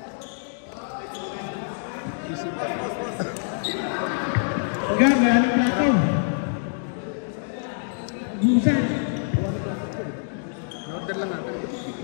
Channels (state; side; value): silent; right; digital silence